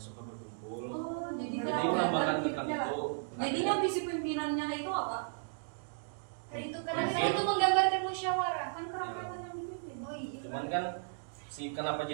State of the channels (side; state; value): left; silent; digital silence